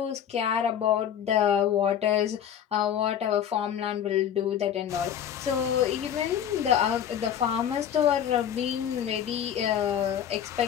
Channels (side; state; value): right; quieter; 9.4 dB